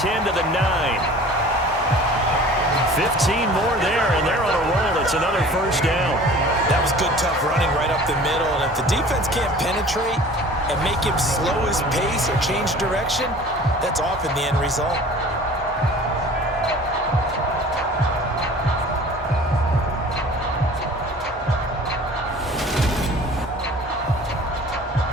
to the 9. 15 more there, and they're on a roll. It's another first down. That was good, tough running right up the middle. And if the defense can't penetrate and make him slow his pace or change direction, that's often the end result.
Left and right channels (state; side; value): normal; both; correlation 0.45